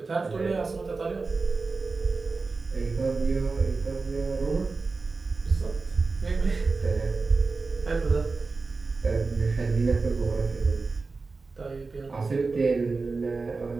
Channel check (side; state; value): left; quieter; 4.0 dB